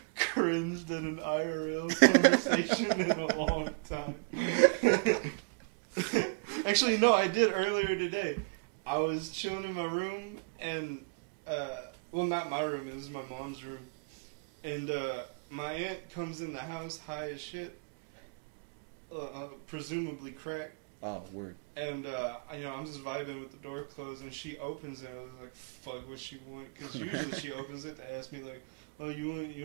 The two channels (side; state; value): left; quieter; 35.4 dB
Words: cringed in an IRL conversation in a long time. Actually, no, I did earlier today. I was chilling in my room and, well, not my room, it was my mom's room. And my aunt comes in the house high as shit, presumably crack. Oh, word. And, I'm just vibing with the door closed, and she opens it. I was like, fuck, what she want? Because usually she opens it to ask me, like, oh, you want